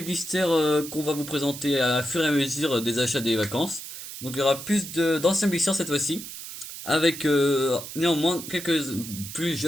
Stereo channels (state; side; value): noise; right; hiss, 11 dB below the sound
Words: blisters qu'on va vous présenter à fur et à mesure des achats des vacances. Donc il y aura plus d'anciens blisters cette fois-ci, avec néanmoins quelques plus